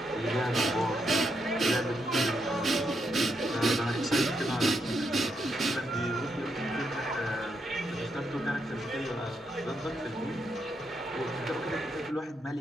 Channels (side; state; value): both; normal; correlation 0.80